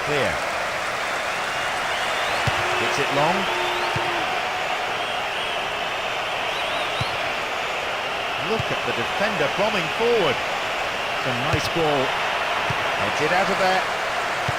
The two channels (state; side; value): noise; left; rumble, 21 dB below the sound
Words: clear. Hits it long. Look at the defender bombing forward. It's a nice ball. Heads it out of there.